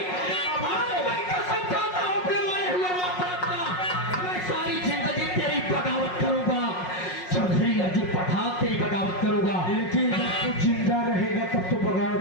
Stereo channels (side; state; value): right; late; 5.5 ms